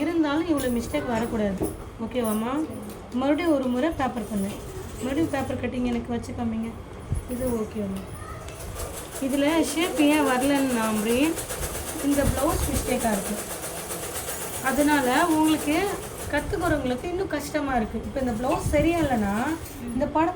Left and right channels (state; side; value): identical; both; correlation 1.00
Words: இருந்தாலும் இவ்வளோ மிஸ்டேக் வரக்கூடாது. ஓகேவாம்மா? மறுபடியும் ஒரு முறை பேப்பர் பண்ணு. மறுபடியும் பேப்பர் கட்டிங் எனக்கு வச்சு காமிங்க. இது ஓகேவாம்மா? இதில் ஷேப் ஏன் வரலன்னு இந்த ப்ளவுஸ் மிஸ்டேக்காக இருக்குது. அதனால் உங்களுக்கு கற்றுக்கிறவங்களுக்கு இன்னும் கஷ்டமாக இருக்குது. இப்போ இந்த ப்ளவுஸ் சரியா இல்லைன்னா இந்த